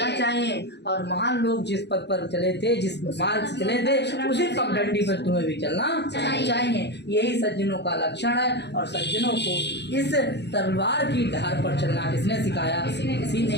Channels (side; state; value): right; late; 0.50 ms